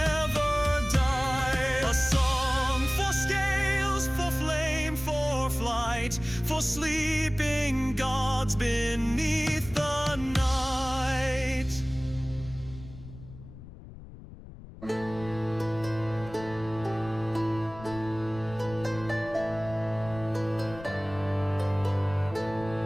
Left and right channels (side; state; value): left; noise; rumble, 16 dB below the sound